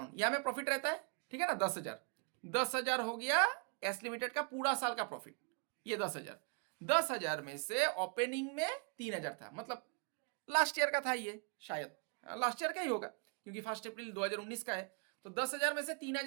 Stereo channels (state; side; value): quieter; left; 33.4 dB